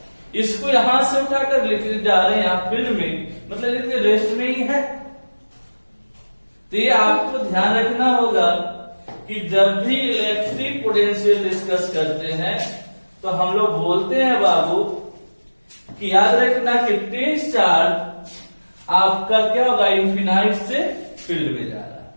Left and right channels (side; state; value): both; inverted; correlation -1.00